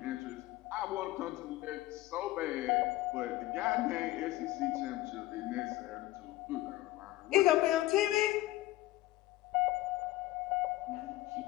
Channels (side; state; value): right; quieter; 16.8 dB